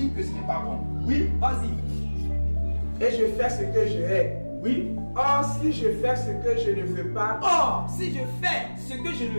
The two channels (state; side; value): inverted; both; correlation -1.00